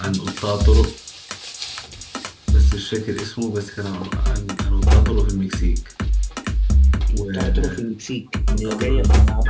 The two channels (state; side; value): identical; both; correlation 1.00